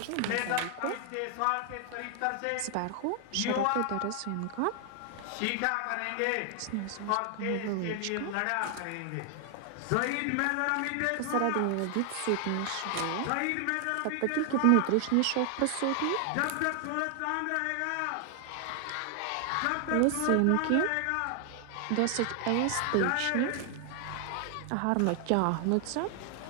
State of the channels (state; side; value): different; both; correlation 0.00